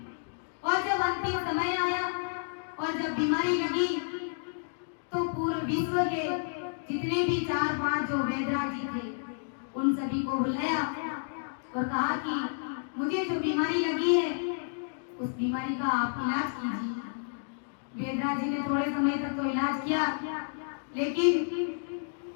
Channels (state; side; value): silent; right; digital silence